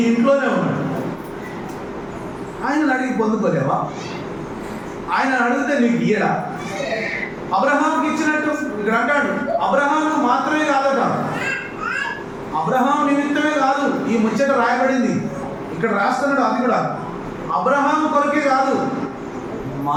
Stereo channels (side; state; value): both; identical; correlation 1.00